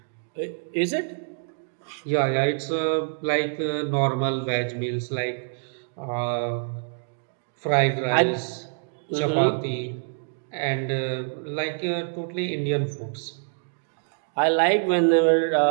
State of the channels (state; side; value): silent; left; digital silence